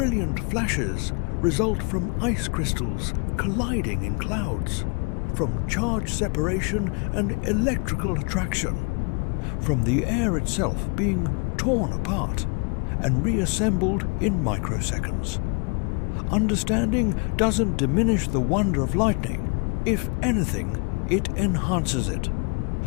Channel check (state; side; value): quieter; right; 35.1 dB